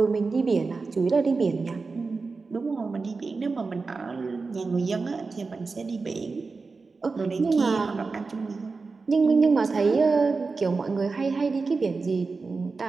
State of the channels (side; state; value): left; quieter; 4.2 dB